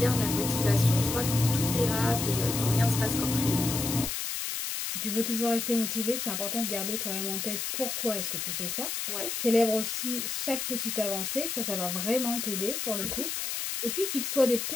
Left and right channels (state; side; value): noise; left; hiss, 3 dB below the sound